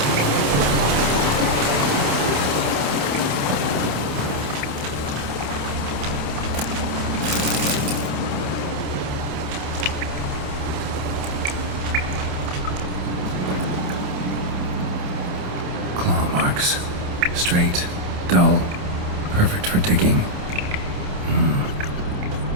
Claw marks. Straight, dull, perfect for digging.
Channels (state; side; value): late; left; 28 ms